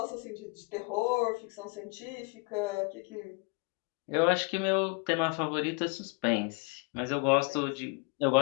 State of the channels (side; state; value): right; quieter; 32.3 dB